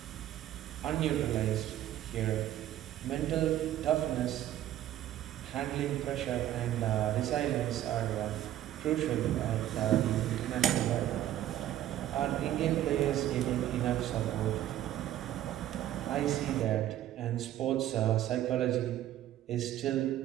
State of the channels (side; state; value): left; quieter; 12.7 dB